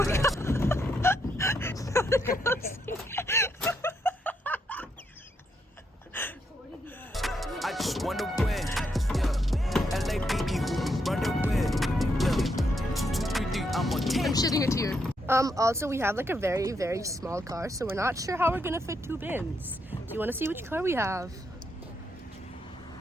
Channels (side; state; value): both; normal; correlation 0.78